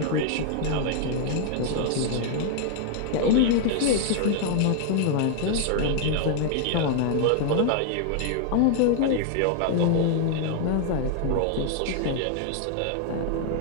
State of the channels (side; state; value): both; different; correlation 0.00